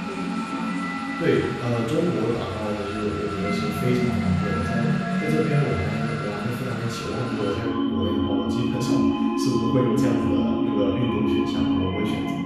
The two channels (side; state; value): both; identical; correlation 1.00